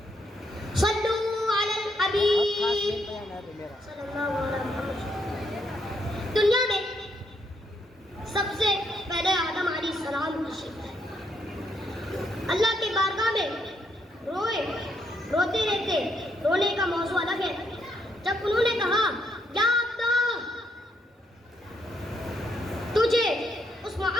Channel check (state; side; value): normal; both; correlation 0.75